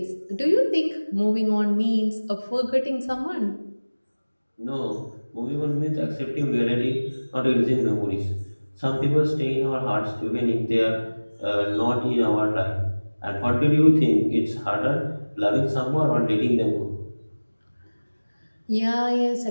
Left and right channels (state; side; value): inverted; both; correlation -1.00